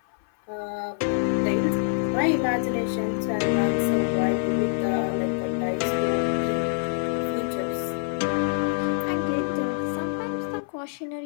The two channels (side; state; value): right; silent; 57 dB below the other